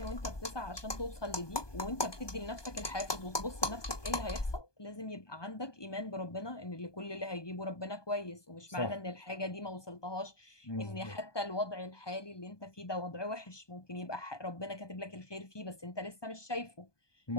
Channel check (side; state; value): right; late; 1.2 ms